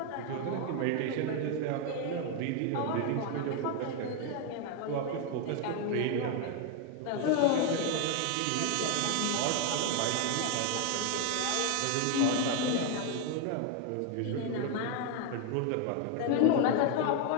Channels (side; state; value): both; different; correlation 0.01